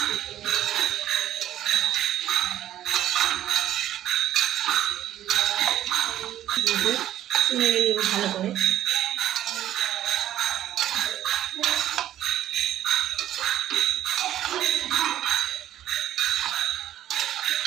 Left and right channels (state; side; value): quieter; left; 12.3 dB